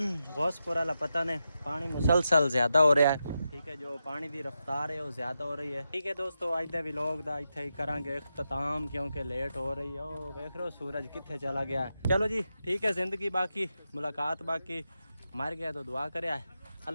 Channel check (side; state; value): both; inverted; correlation -0.88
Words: वाला पता नहीं पानी मुसलसल ज़्यादा हो रहा है, ठीक है, जो पानी की रफ्तार है वो ज़्यादा हो रही है। ठीक है दोस्तों अज दे व्लॉग दा इत्थे ही करांगे इख्तिताम क्योंकि लेट हो रही है। ओ देख रहे हो सूरज कित्थे चला गया है। चलो जी ठीक है, ज़िंदगी बाकी मुलाकात बाकी, मर गया तो दुआ करे।